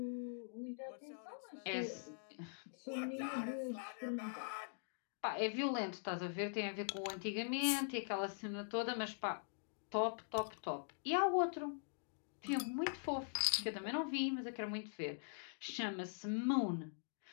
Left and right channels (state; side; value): silent; right; digital silence